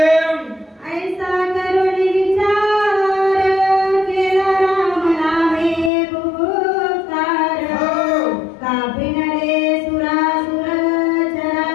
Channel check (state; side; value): drops out; right; at 5.9 s